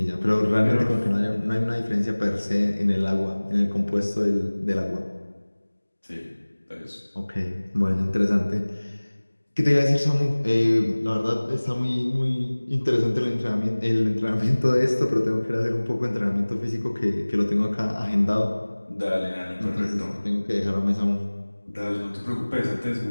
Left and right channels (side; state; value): both; inverted; correlation -1.00